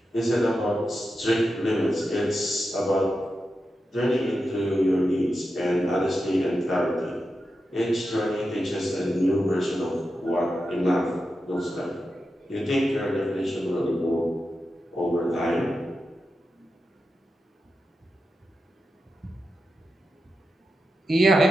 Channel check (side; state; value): both; normal; correlation 0.89